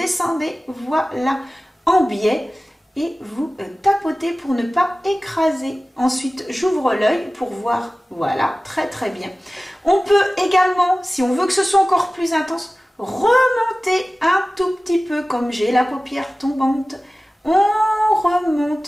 voilà, en biais. Et vous tapotez pour ne pas écraser. Ensuite, j'ouvre l'œil pour voir. Voilà, très bien. On peut également, si on veut que ce soit encore plus intense, remonter un tout petit peu, comme j'ai la paupière tombante. On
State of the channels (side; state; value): both; normal; correlation 0.97